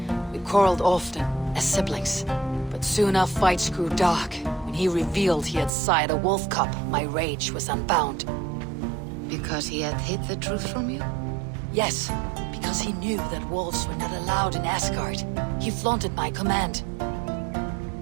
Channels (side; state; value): left; drops out; at 5.7 s